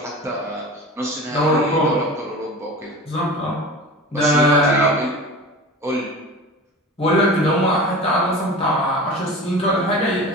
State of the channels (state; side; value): normal; both; correlation 0.34